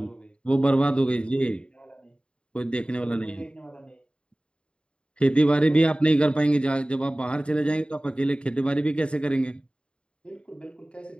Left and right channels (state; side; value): late; right; 0.054 ms